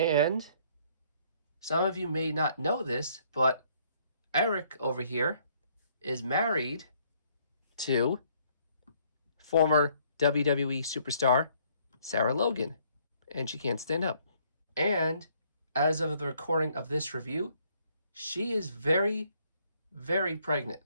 some of you may not know this, but Erik over here is married to former WWE superstar Sarah Logan, and she can't stand up. And as of the recording of this review, she is very, very pregnant.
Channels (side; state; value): both; inverted; correlation -0.65